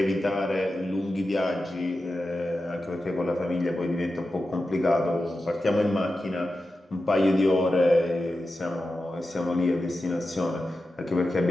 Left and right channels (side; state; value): both; normal; correlation 0.92